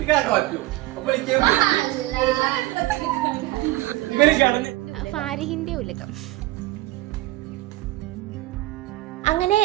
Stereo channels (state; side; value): quieter; left; 18.0 dB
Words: ഫാരിഹിന്റെ ഉലകം. അങ്ങനെ